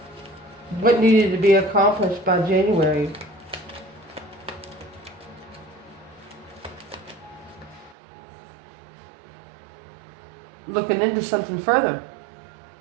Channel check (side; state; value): left; drops out; at 8.0 s